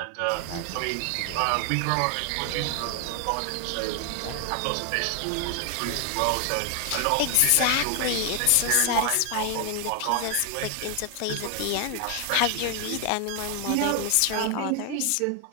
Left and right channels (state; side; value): different; both; correlation 0.00